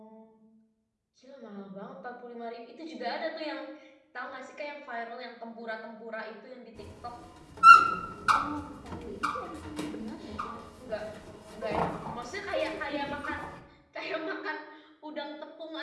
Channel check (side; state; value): both; identical; correlation 1.00